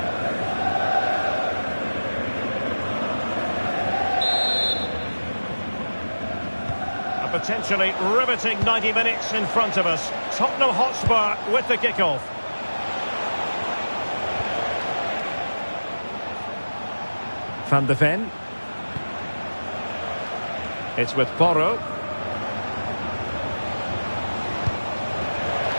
Potentially riveting 90 minutes in front of us. Tottenham Hotspur with the kickoff. Van de Ven. It's with Porro.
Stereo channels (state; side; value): inverted; both; correlation -1.00